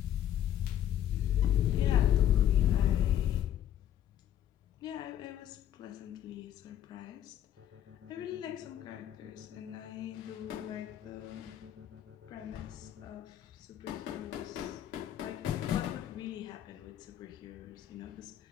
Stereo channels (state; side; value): quieter; right; 11.0 dB